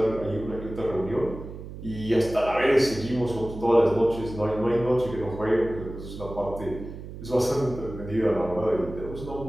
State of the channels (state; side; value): noise; right; hum, 12 dB below the sound